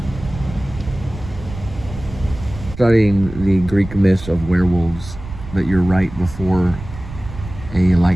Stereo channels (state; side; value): noise; right; rumble, 13 dB below the sound